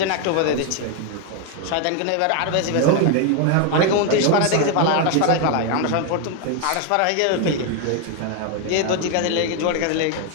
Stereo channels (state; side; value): different; both; correlation 0.01